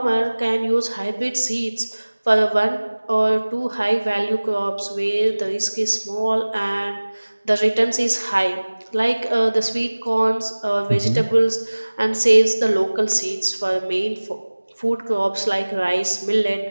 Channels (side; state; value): both; inverted; correlation -1.00